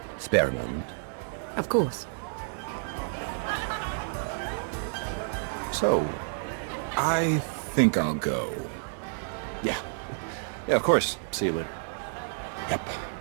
Spare a moment. Of course. So, I think I'll go. Yeah. Yeah, of course. See you later. Yep.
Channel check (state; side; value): silent; left; digital silence